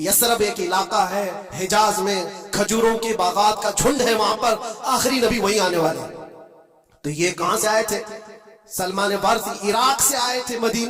ایک علاقہ ہے حجاز میں، کھجوروں کے باغات کا جھنڈ ہے، وہاں پر آخری نبی وہیں آنے والے۔ تو یہ کہاں سے آئے تھے؟ سلمان فارسی عراق سے آئے تھے،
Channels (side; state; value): both; identical; correlation 1.00